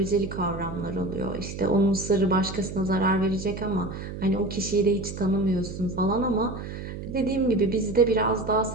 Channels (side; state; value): right; noise; hum, 9 dB below the sound